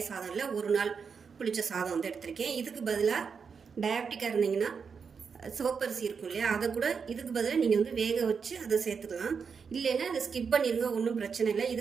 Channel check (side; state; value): left; quieter; 5.9 dB